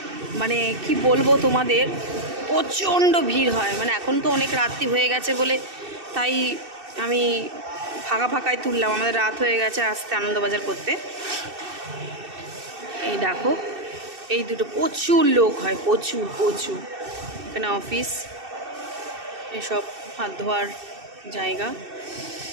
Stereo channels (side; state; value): left; late; 2.6 ms